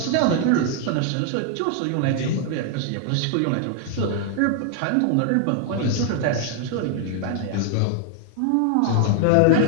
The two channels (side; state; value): both; different; correlation 0.00